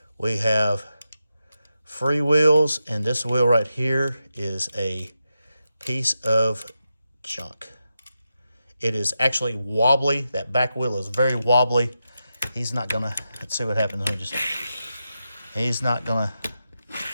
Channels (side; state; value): both; inverted; correlation -0.88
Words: We have free wheels, and this wheel right here is a piece of junk. It is actually wobbly. That back wheel is very wobbly. He's not gonna, let's see what happens. He's not gonna,